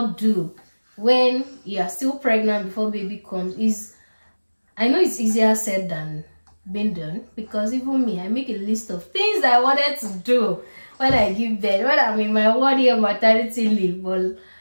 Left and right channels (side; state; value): both; inverted; correlation -1.00